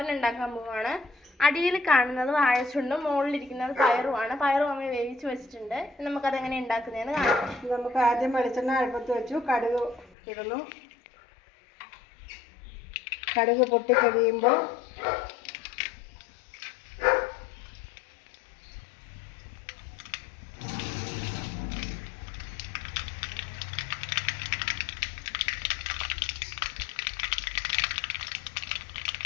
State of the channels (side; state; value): right; drops out; at 10.2 s